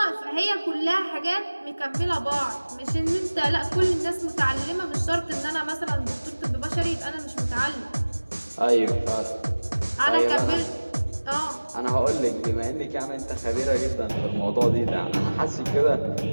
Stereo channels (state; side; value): inverted; both; correlation -1.00